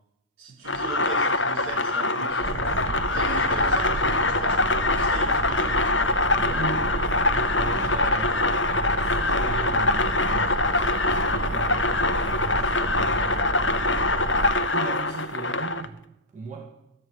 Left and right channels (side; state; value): both; normal; correlation -0.13